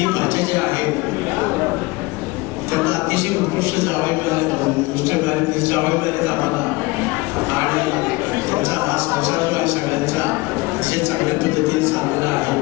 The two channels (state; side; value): quieter; right; 23.3 dB